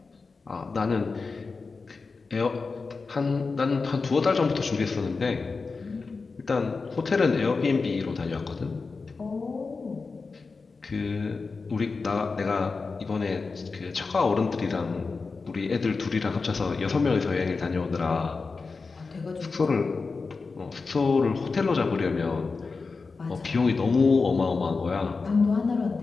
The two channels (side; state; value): right; quieter; 4.3 dB